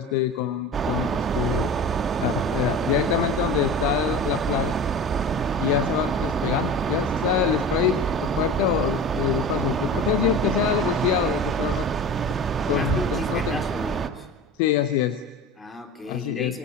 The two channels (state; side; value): normal; both; correlation 0.33